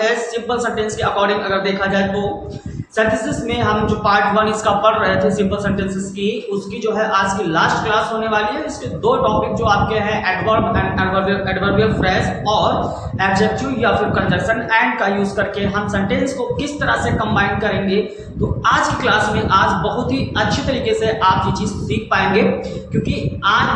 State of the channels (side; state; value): both; identical; correlation 1.00